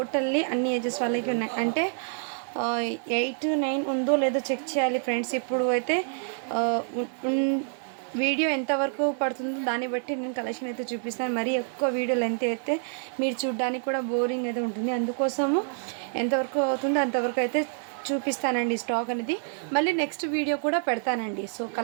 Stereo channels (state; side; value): silent; left; 59 dB below the other